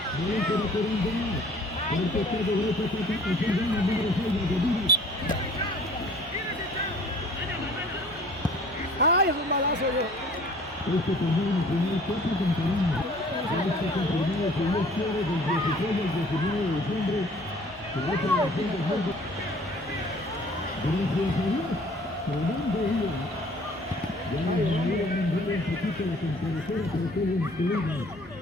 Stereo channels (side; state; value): both; normal; correlation 0.52